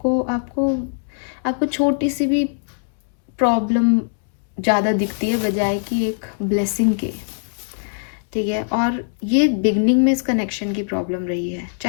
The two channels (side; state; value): right; silent; digital silence